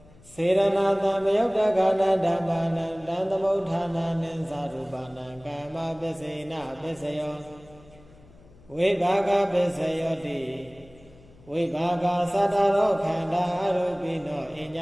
စေရဏသမယုတ်တကနာဓမ္မာနံတံသမုဋ္ဌာနာနိသရူပနာကာမပစ္စေနပစ္စယောဝိဘာဂပစ္စယောတိဝိဘာဂသတ္တရောခန္ဓာအရူပိနောအည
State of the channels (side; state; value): left; noise; hum, 25 dB below the sound